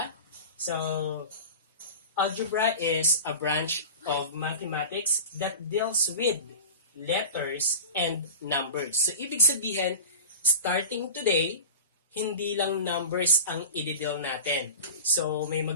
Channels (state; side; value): inverted; both; correlation -0.32